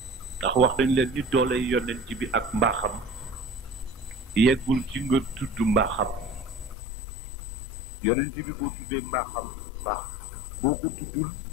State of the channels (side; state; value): right; drops out; at 6.8 s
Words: ndax wax dañ leen ni doole yonent bi ak mbaaxam yeggul ci nga tudd mbaaxam. yonent bi boo tuddee mbaaxam baax, boo ko tuddul